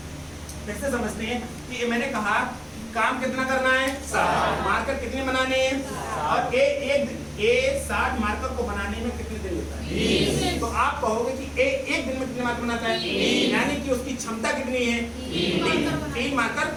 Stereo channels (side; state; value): both; identical; correlation 1.00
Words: कैसे समझते हैं कि मैंने कहा काम कितना करना है? 60 मार्कर कितने बनाने हैं? और ए 60 मार्कर को बनाने में कितने दिन लेता है? तो आप कहोगे कि एक दिन में कितने मार्कर बनाता है? यानी कि उसकी क्षमता कितनी है? 3 मार्कर